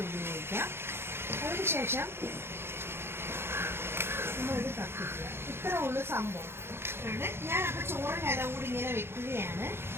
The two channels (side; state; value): left; late; 0.12 ms